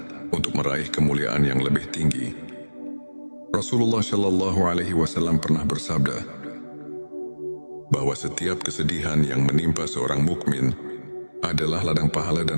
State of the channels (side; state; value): both; inverted; correlation -1.00